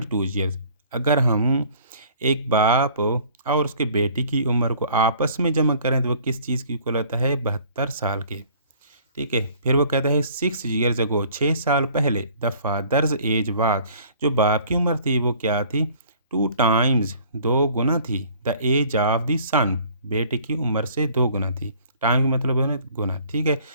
years. अगर हम एक बाप और उसके बेटी की उम्र को आपस में जमा करें तो वो किस चीज़ की इक्वल होता है, 72 साल के, ठीक है। फिर वो कहता है 6 ईयर्स अगो, 6 साल पहले, द फादर्स एज वाज, जो बाप की उम्र थी वो क्या थी, 2 टाइम्स, 2 गुना थी, द एज ऑफ द सन, बेटे की उम्र से 2 गुना थी। टाइम का मतलब है ना गुना, ठीक है।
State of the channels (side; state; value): both; inverted; correlation -0.53